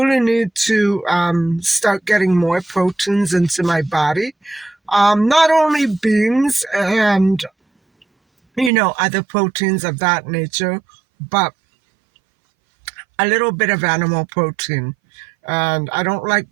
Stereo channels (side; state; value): left; drops out; at 8.7 s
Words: need to start getting more proteins into my body. Not only beans and, other proteins of that nature, but a little bit of animal protein. And I don't like